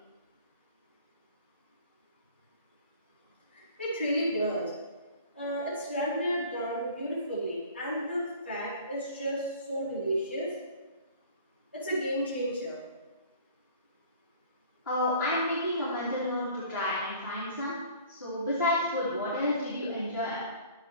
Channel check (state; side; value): inverted; both; correlation -0.49